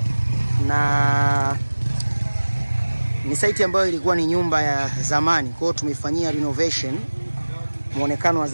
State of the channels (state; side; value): inverted; both; correlation -1.00